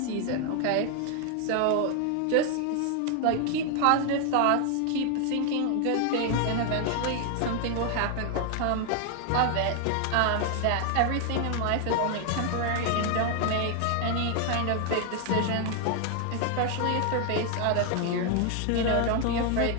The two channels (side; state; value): both; different; correlation 0.00